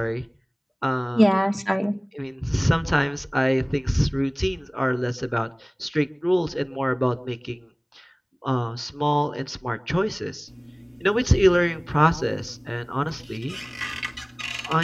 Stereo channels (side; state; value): both; identical; correlation 1.00